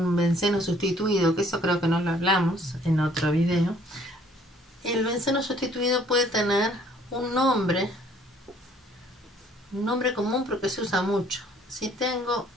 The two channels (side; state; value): both; normal; correlation 0.59